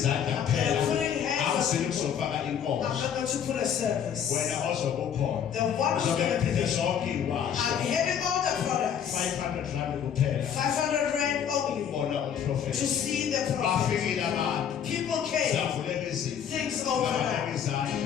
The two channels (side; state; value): right; quieter; 8.5 dB